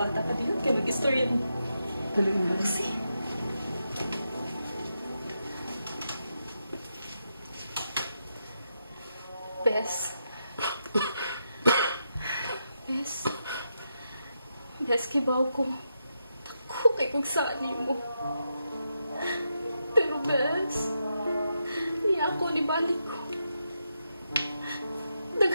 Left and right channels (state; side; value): inverted; both; correlation -0.84